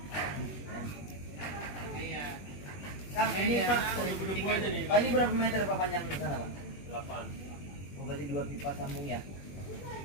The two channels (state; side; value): late; right; 21 ms